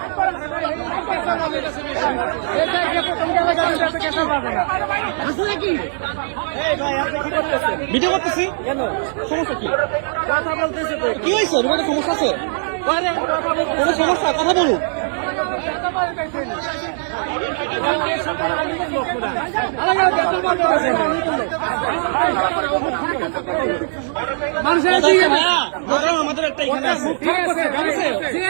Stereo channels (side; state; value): left; silent; 66 dB below the other